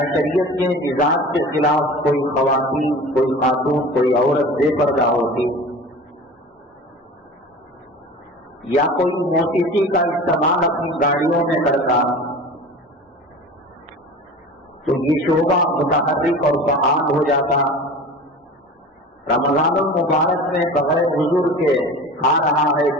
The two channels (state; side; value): normal; both; correlation 0.37